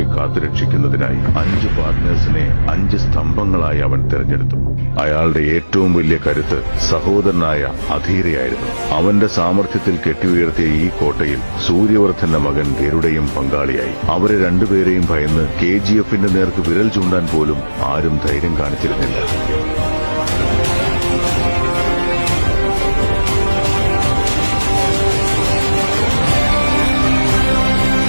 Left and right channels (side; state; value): both; inverted; correlation -1.00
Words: കാത്തുരക്ഷിക്കുന്നതിനായി 5 പാർട്ട്നേഴ്സിനെ 5 സ്തംഭങ്ങളായി അവൻ തിരഞ്ഞെടുത്തു. അയാളുടെ ഏറ്റവും വലിയ കരുത്ത് സഹോദരനായ അധീരയായിരുന്നു. അവന്റെ സാമർഥ്യത്തിൽ കെട്ടിയുയർത്തിയ ഈ കോട്ടയിൽ സൂര്യവർദ്ധന്റെ മകൻ ഗരുഡയും പങ്കാളിയായി. അവരെ രണ്ടുപേരെയും ഭയന്ന് KGFന്റെ നേർക്ക് വിരൽ ചൂണ്ടാൻ പോലും ആരും ധൈര്യം കാണിച്ചിരുന്നില്ല.